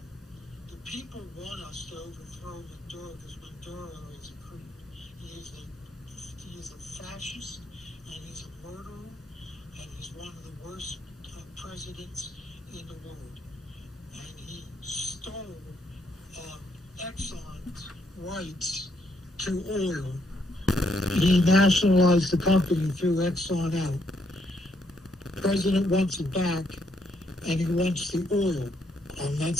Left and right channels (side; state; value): both; normal; correlation 0.75